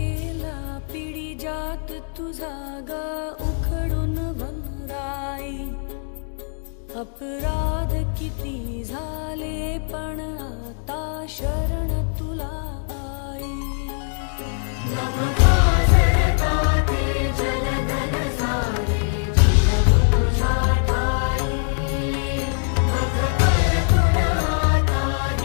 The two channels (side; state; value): right; silent; 64 dB below the other